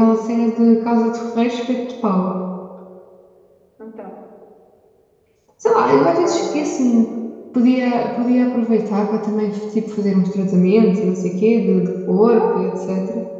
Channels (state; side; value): identical; both; correlation 1.00